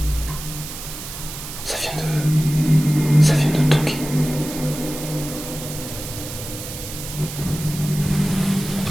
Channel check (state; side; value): noise; right; hiss, 10 dB below the sound